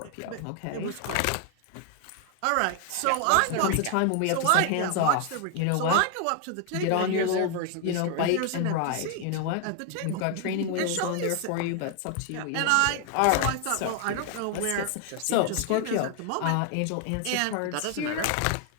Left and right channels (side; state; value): both; different; correlation 0.00